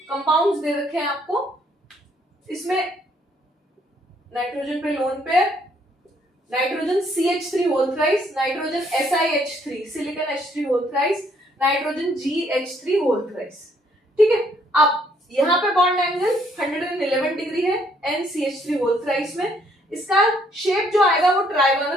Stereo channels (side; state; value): both; normal; correlation 0.67